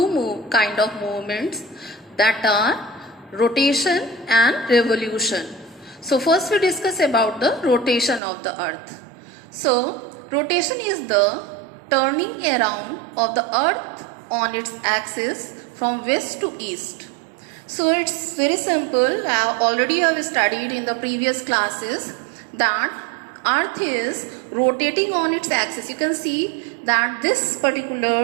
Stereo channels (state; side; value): drops out; left; at 8.2 s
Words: kind of movements, that are rotation and revolution. So first we discuss about the rotation of the Earth. So rotation is the turning around of the Earth on its axis from west to east. So it's very simple. I already have studied in the previous classes that Earth is rotating on its axis. You can see that this